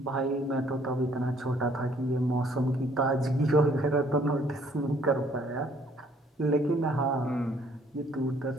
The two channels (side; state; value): both; normal; correlation 0.62